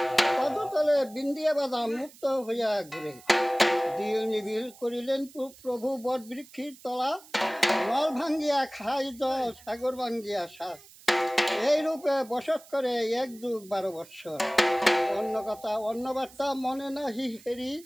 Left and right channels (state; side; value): noise; right; hiss, 22 dB below the sound